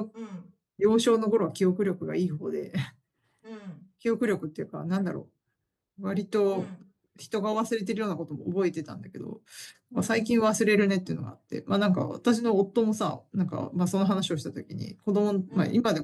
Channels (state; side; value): identical; both; correlation 1.00